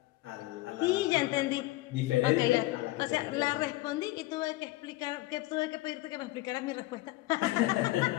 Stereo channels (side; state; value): right; quieter; 18.9 dB